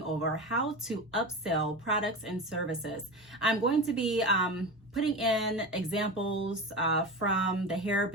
over how to upsell products and services. I'm going to be putting in examples from the hair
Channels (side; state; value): both; normal; correlation 0.26